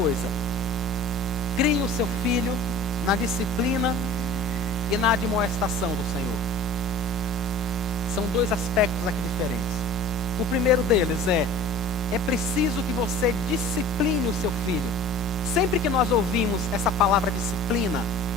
Crie o seu filho na disciplina e na admoestação do Senhor. São dois aspectos aqui diferentes. O primeiro deles é preciso que você discipline o seu filho. Sempre que nós ouvimos essa palavra disciplina,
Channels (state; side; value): normal; both; correlation 0.43